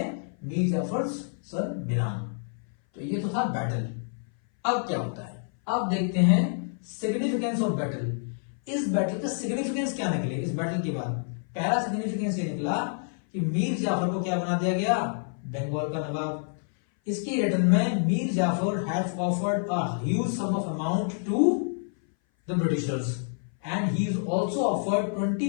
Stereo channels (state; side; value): silent; right; 58 dB below the other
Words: Mir Jafar son Miran. तो ये तो था बैटल। अब क्या होता है? अब देखते हैं सिग्निफिकेंस ऑफ बैटल। इस बैटल का सिग्निफिकेंस क्या निकले इस बैटल के बाद? पहला सिग्निफिकेंस ये निकला कि मीर जाफर को क्या बना दिया गया, बंगाल का नवाब। इसकी रिटर्न में Mir Jafar have offered a huge sum of amount to the britishers and he is also offered